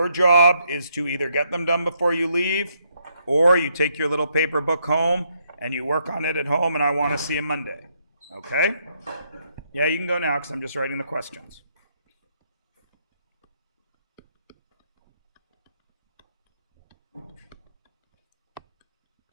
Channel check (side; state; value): both; inverted; correlation -0.74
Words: job is to either get them done before you leave, or you take your little paper book home and you work on it at home, and I want to see you Monday. Okay? Yeah, you can go now because I'm just writing the questions.